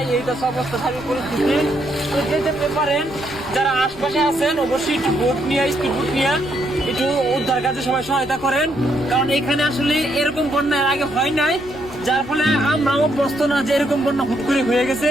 এইটা সব অবস্থা স্বাভাবিক পরিস্থিতি। তো যেতে পারেন যারা আশপাশে আছেন অবশ্যই একটু বোট নিয়ে, স্পিড বোট নিয়ে একটু উদ্ধার কাজে সবাই সহায়তা করেন, কারণ এখানে আসলে এরকম বন্যা এর আগে হয় নাই, যার ফলে আমরাও অভ্যস্ত না যে এরকম বন্যা হুট করে হয়ে গেছে।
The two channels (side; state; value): left; noise; rumble, 20 dB below the sound